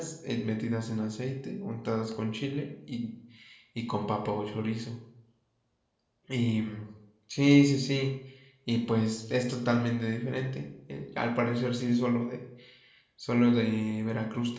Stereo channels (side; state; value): both; identical; correlation 1.00